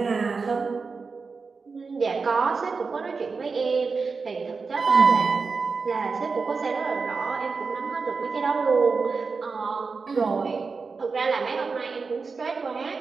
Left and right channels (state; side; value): quieter; left; 4.7 dB